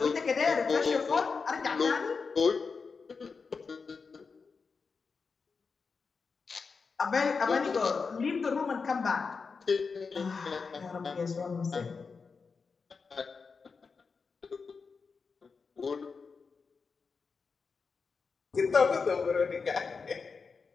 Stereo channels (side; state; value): right; quieter; 5.0 dB